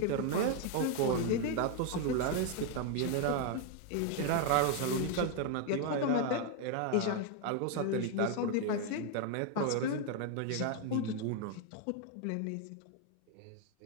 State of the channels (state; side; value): different; both; correlation 0.01